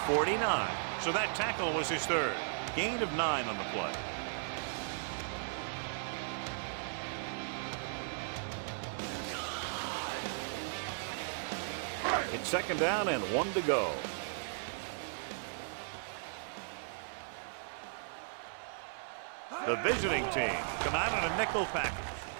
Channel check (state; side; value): silent; left; digital silence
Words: 49. So that tackle was his third. Gain of 9 on the play. It's 2nd down and 1 to go. The visiting team come out in a nickel package.